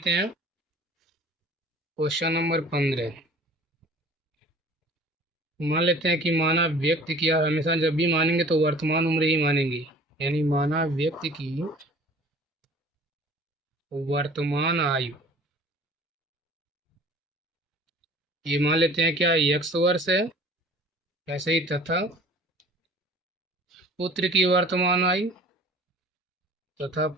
हैं क्वेश्चन नंबर 15। मान लेते हैं कि माना व्यक्ति की, और हमेशा जब भी मानेंगे तो वर्तमान उम्र ही मानेंगे, यानी माना व्यक्ति की वर्तमान आयु ये मान लेते हैं क्या x वर्ष है, ऐसे ही तथा पुत्र की वर्तमान आयु, तथा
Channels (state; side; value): normal; both; correlation 0.47